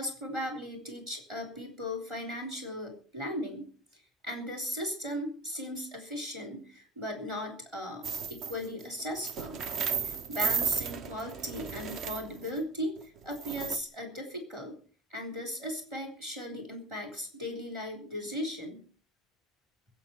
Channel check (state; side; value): normal; both; correlation 0.31